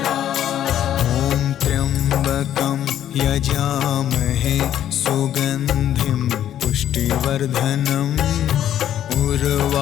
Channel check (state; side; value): quieter; right; 11.0 dB